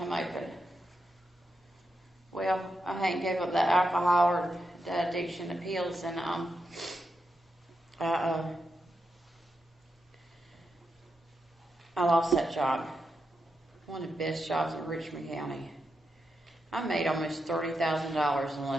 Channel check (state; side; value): normal; both; correlation 0.86